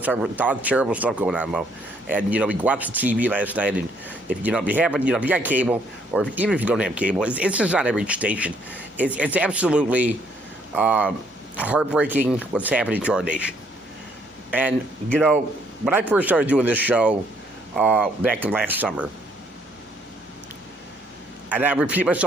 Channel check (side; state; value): both; normal; correlation 0.67